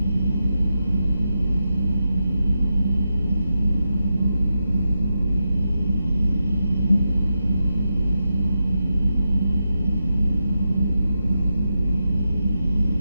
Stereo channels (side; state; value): both; inverted; correlation -0.88